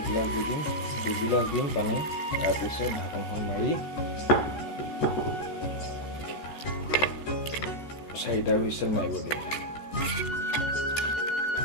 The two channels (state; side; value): late; right; 14 ms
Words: দি দিম, 2 গিলাচ দিম পানী। তাৰপিছত ঢাকনখন মাৰি 4টা হুইচেল মাৰিব দিম।